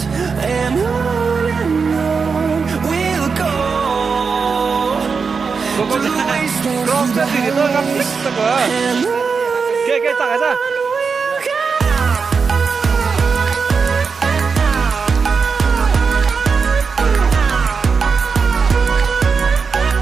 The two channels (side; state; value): left; quieter; 5.3 dB